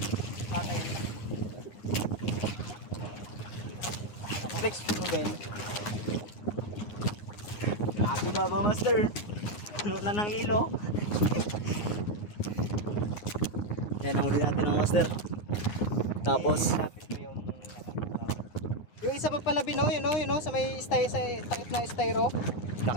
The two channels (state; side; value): late; right; 9.6 ms